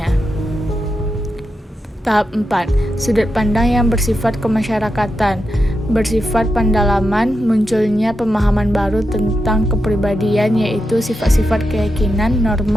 Tahap 4, sudut pandang yang bersifat kemasyarakatan. Bersifat pendalaman, munculnya pemahaman baru tentang kepribadian, yaitu sifat-sifat keyakinan,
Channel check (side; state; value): both; normal; correlation 0.87